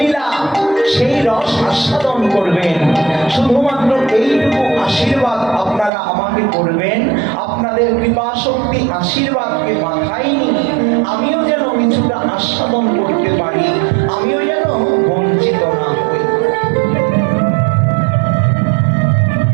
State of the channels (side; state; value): left; drops out; at 5.9 s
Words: সেই রস আস্বাদন করবেন। শুধুমাত্র এইটুকু আশীর্বাদ আপনারা আমাকে করবেন। আপনাদের কৃপা শক্তি আশীর্বাদকে মাথায় নিয়ে আমিও যেন কিছুটা আস্বাদন করতে পারি, আমিও যেন বঞ্চিত না হই।